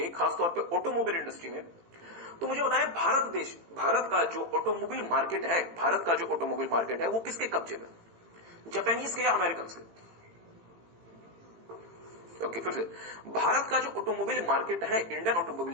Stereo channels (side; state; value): left; late; 18 ms